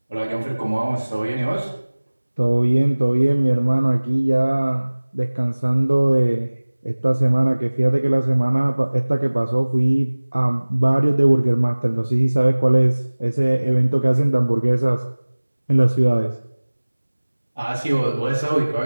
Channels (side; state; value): both; inverted; correlation -1.00